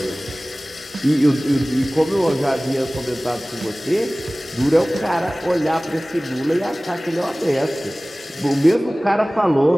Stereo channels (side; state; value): both; normal; correlation 0.98